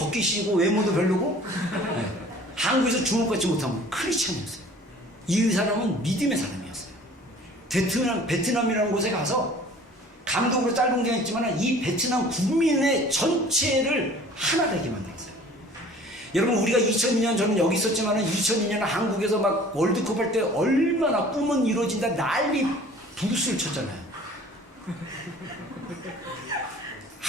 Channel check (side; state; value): both; normal; correlation 0.49